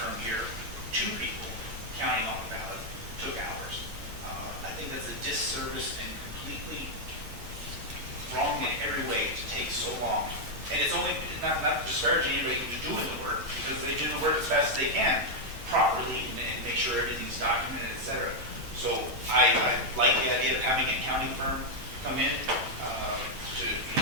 here, 2 people counting all the ballots, took hours. I think that's a disservice and completely wrong in every way to take so long. And it's only, not disparaging anybody who's doing the work, because they do the work as fast as they can, properly, and make sure everything's documented, et cetera. So I like the idea of having an accounting firm come in,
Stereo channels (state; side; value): late; left; 9.1 ms